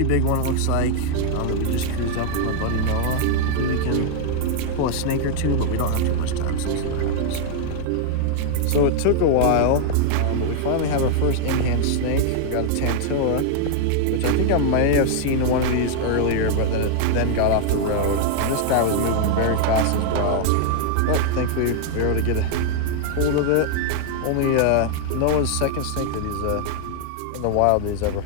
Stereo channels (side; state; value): both; different; correlation 0.00